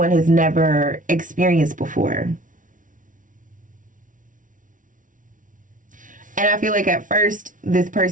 has never experienced before. And I feel like at first, this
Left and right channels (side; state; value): left; late; 0.38 ms